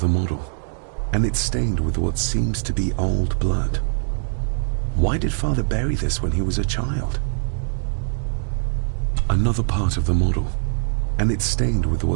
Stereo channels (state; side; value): silent; left; 59 dB below the other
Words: model. And it's stained with what seems to be old blood. Why did Father bury this when he was a child? Another part of the model. And it's stained with